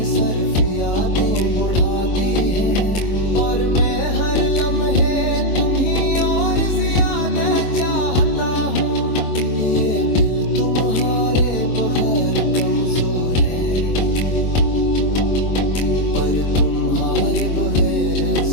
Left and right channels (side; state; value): right; late; 23 ms